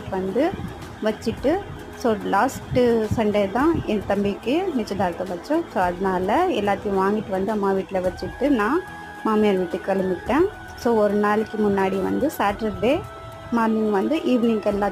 வந்து வச்சுட்டு, ஸோ லாஸ்ட்டு சண்டே தான் என் தம்பிக்கு நிச்சயதார்த்தம் வச்சோம். ஸோ அதனால் எல்லாத்தையும் வாங்கிட்டு வந்து அம்மா வீட்டில் வச்சுட்டு நான் மாமியார் வீட்டுக்கு கிளம்பிட்டேன். ஸோ ஒரு நாளைக்கு முன்னாடி வந்து சாட்டர்டே மார்னிங் வந்து ஈவினிங்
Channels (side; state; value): both; identical; correlation 1.00